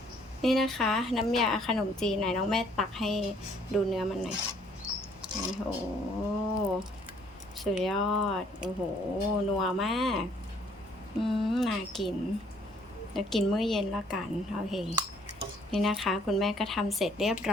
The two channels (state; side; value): normal; both; correlation 0.63